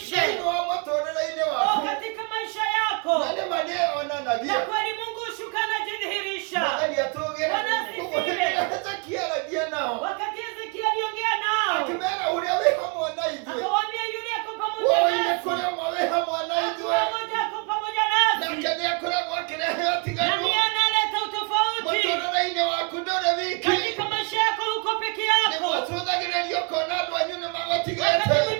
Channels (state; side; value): quieter; left; 34.2 dB